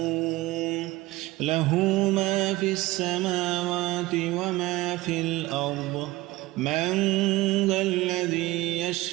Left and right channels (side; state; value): left; quieter; 19.0 dB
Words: له ما في السماوات وما في الأرض من ذا الذي